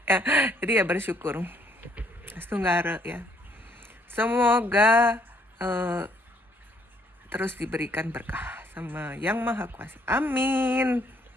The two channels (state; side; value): normal; both; correlation 0.67